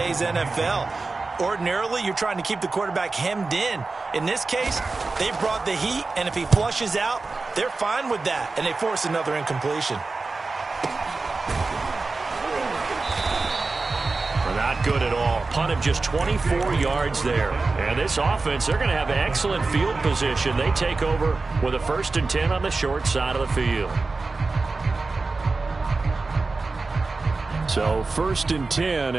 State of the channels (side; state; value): left; quieter; 3.8 dB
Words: NFL. Ordinarily, you're trying to keep the quarterback hemmed in. In this case, they brought the heat, and if he flushes out, they're fine with that, and they force another incompletion. Not good at all. Punt of just 24 yards there. And this offense, they're going to have excellent field position. They take over with a 1st and 10 on the short side of the field. So 1st and 10,